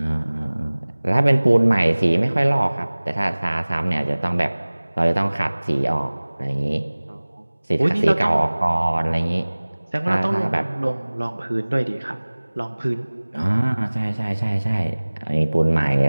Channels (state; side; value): inverted; both; correlation -1.00